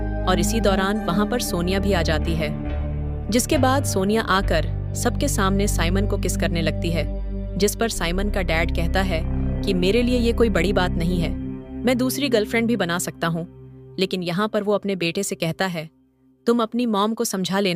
और इसी दौरान वहाँ पर सोनिया भी आ जाती है, जिसके बाद सोनिया आकर सबके सामने साइमन को किस करने लगती है, जिस पर साइमन का डैड कहता है कि मेरे लिए ये कोई बड़ी बात नहीं है, मैं दूसरी गर्लफ्रेंड भी बना सकता हूँ। लेकिन यहाँ पर वो अपने बेटे से कहता है तुम अपनी मॉम को समझा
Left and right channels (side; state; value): both; identical; correlation 1.00